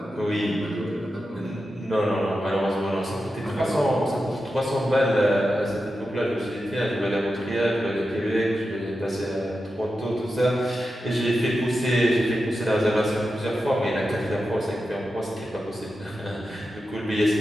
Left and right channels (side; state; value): both; normal; correlation 0.90